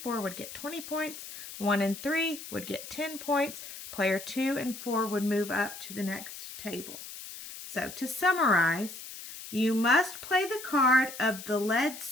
would get 20 points. 1 and 3 would get 10 points. Player 2 and 4 would move up to the next table. So to summarize, you must play the card of the led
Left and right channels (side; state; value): left; noise; hiss, 12 dB below the sound